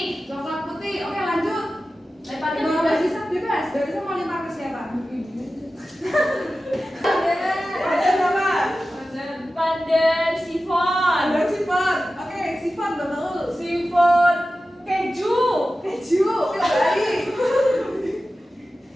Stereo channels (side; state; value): both; normal; correlation 0.94